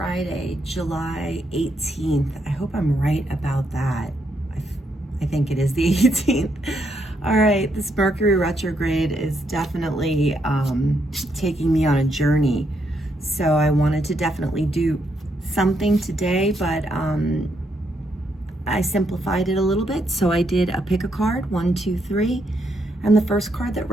July 18th. I hope I'm right about that. I think it is the 18th. All right, this Mercury retrograde is definitely taking me on a journey. So I wanted to definitely do something today, but I simplified it a little bit. So I did a pick a card, 1, 2, 3. And the first card that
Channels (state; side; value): normal; both; correlation 0.77